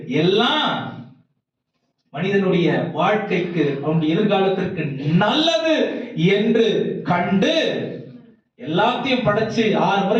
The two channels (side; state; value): both; identical; correlation 1.00